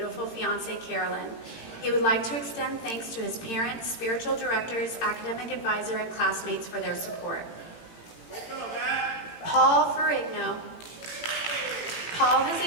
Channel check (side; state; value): right; late; 18 ms